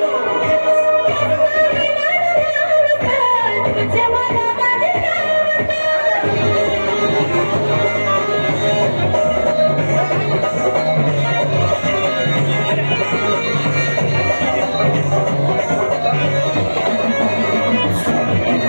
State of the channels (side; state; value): both; inverted; correlation -1.00